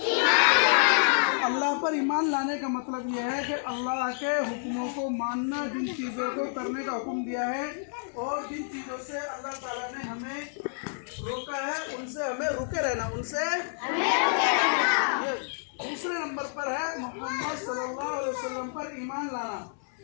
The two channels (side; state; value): right; silent; digital silence